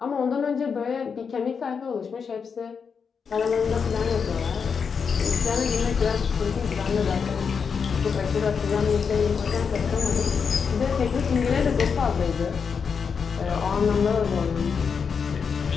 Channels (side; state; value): right; quieter; 6.1 dB